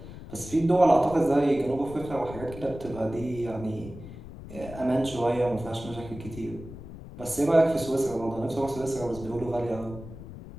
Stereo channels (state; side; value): noise; left; rumble, 13 dB below the sound